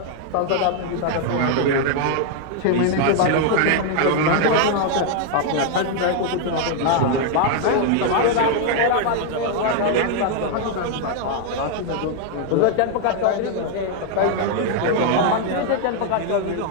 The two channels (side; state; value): both; different; correlation 0.00